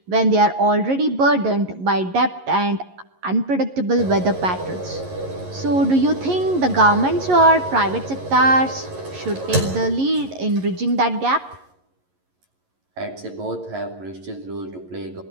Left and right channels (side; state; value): left; late; 11 ms